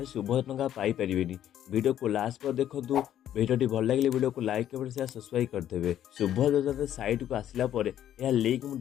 शुभोदय टंका पाइपर वीडियो को लास्ट पर देखूँ। वीडियो भल लगे वीडियो को लाइक कमेंट शेयर सब्सक्राइब करदेवे। शुभोदय योजना साइट को आसला यह लिंक मुझे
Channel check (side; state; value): right; quieter; 11.1 dB